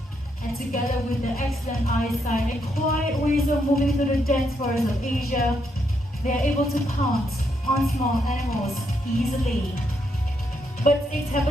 And together with their excellent eyesight and quiet ways of moving through the dense forests of Asia, they are able to pounce on small animals easily. Bird steaks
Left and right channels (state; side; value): normal; both; correlation 0.77